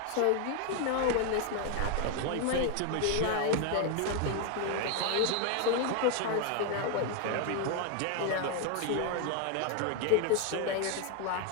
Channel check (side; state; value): both; different; correlation 0.01